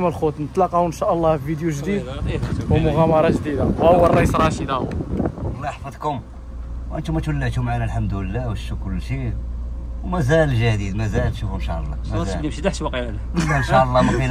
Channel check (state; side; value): identical; both; correlation 1.00